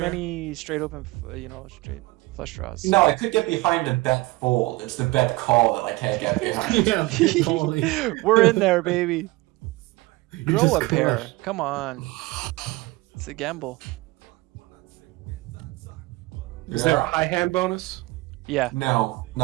straight open, straight flush draws. No, I could get behind a bet fold. It's the bet call that I can't get behind. Yeah, big calling. We're in there, baby. You Grow just a pair. crushed. Come on. It's a gamble. Is there a high hand bonus? Yeah. No,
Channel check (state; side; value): quieter; left; 21.4 dB